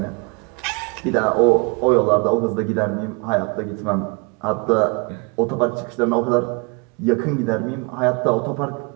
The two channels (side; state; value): left; quieter; 31.3 dB